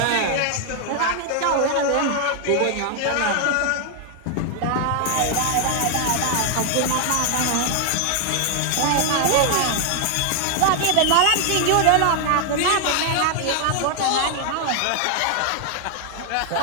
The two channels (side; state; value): both; different; correlation 0.00